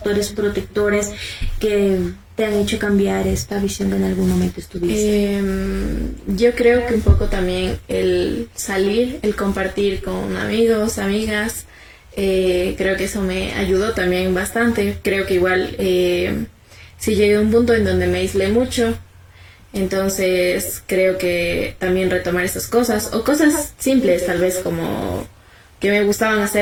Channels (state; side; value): identical; both; correlation 1.00